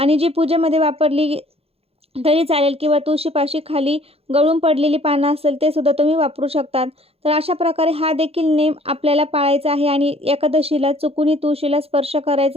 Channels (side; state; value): left; late; 0.29 ms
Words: जी पूजेमध्ये वापरली तरी चालेल किंवा तुळशीपाशी खाली गळून पडलेली पानं असेल ते सुद्धा तुम्ही वापरू शकतात. तर अशा प्रकारे हा देखील नेम आपल्याला पाळायचा आहे आणि एकादशीला चुकूनही तुळशीला स्पर्श